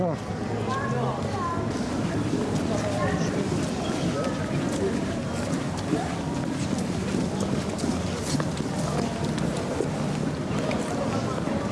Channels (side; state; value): both; identical; correlation 1.00